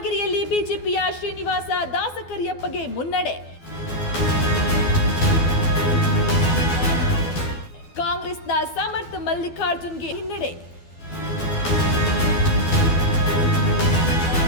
ಬಿಜೆಪಿಯ ಶ್ರೀನಿವಾಸ ದಾಸಕರಿಯಪ್ಪಗೆ ಮುನ್ನಡೆ. ಕಾಂಗ್ರೆಸ್ನ ಸಮರ್ಥ ಮಲ್ಲಿಕಾರ್ಜುನ್ಗೆ ಹಿನ್ನಡೆ.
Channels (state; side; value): late; right; 12 ms